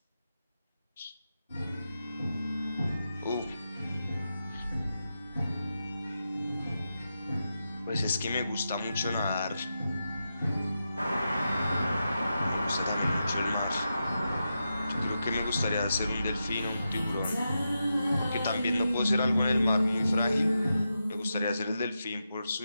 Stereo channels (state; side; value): inverted; both; correlation -0.88